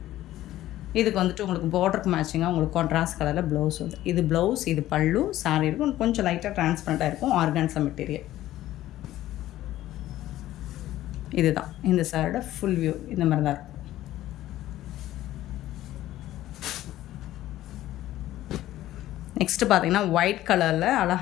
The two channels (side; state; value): right; quieter; 14.3 dB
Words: இதுக்கு வந்துட்டு உங்களுக்கு பார்டருக்கு மேட்சிங்காக உங்களுக்கு கான்ட்ராஸ்ட் கலரில் ப்ளவுஸ் வந்து இது ப்ளவுஸ், இது பல்லு. சாரி இருக்கும் கொஞ்சம் லைட்டாக டிரான்ஸ்பரண்ட்டாக இருக்கும். ஆர்கான்ஸா மெட்டீரியல் இதுதான். இந்த சாரோட ஃபுல் வியூ இந்த மாதிரி தான் இருக்கும். நெக்ஸ்ட்டு பார்த்திங்கன்னா ஒயிட் கலரில்